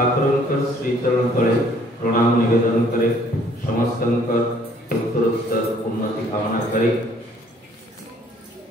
শ্রী চরণ তଳେ প্রণাম নিবেদন করে সমস্তଙ୍କର উত্তरोत्तर उन्नति कामना करे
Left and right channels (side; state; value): both; normal; correlation 0.61